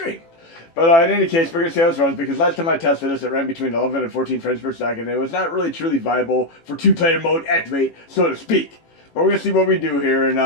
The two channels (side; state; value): right; late; 18 ms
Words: But in any case, we're going to see how this runs, because last time I tested this, it ran between 11 and 14 frames per second. It was not really truly viable for two-player mode activate, so to speak. But we're going to see what we do here, and